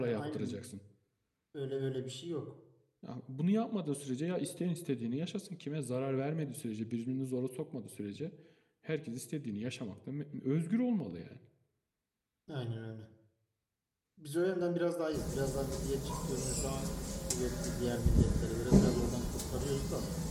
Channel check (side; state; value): both; identical; correlation 1.00